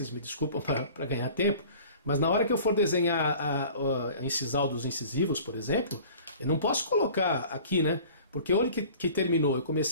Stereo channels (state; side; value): inverted; both; correlation -0.46